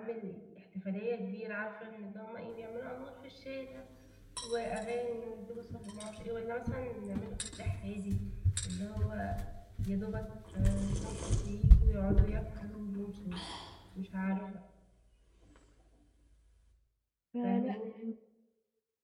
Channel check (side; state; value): both; identical; correlation 1.00